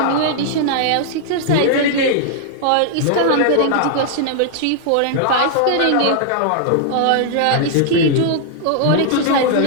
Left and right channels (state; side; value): different; both; correlation -0.01